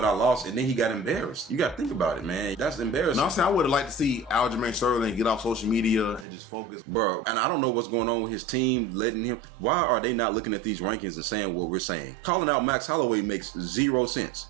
I lost, and then he got embarrassed. You got to think about it, man. That's embarrassing. No, I'm saying I would have liked to see Aljamain Sterling get off social media and just focus. Bro, and I don't know what's going on with his team letting him. Why are they not looking at these rankings and saying what we're saying? Calling out Max Holloway makes zero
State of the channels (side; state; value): left; drops out; at 6.2 s